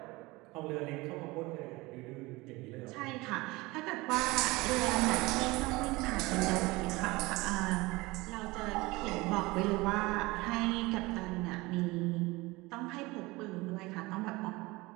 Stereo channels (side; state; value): left; quieter; 22.1 dB